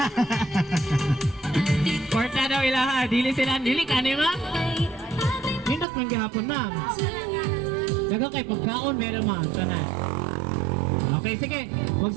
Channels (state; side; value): drops out; left; at 5.9 s